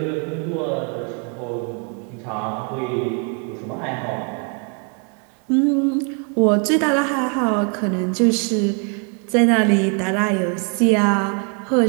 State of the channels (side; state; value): left; quieter; 37.5 dB